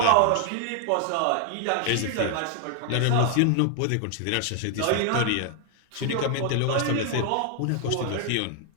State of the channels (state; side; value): different; both; correlation 0.00